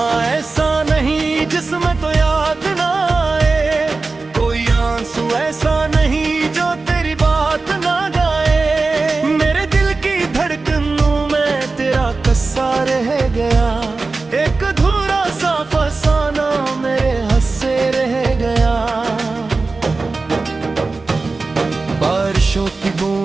ऐसा नहीं जिसमें तो याद ना आए, कोई आंसू ऐसा नहीं जो तेरी बात ना गाए। मेरे दिल की धड़कनों में तेरा कस्सा रह गया, एक अधूरा सा फसाना मेरे हंसे रह गया। बारिशों की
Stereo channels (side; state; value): left; quieter; 3.8 dB